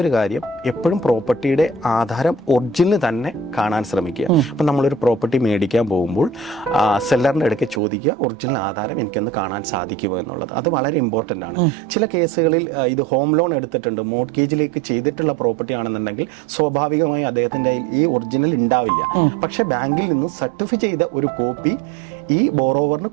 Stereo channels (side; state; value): left; drops out; at 7.8 s